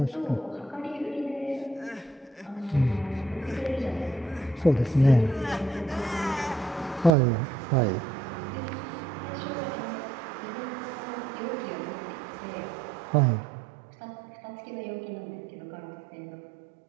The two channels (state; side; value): drops out; left; at 7.2 s